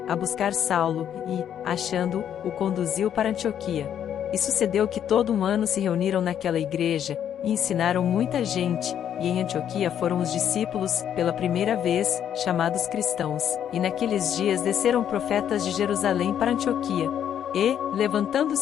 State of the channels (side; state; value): right; quieter; 9.5 dB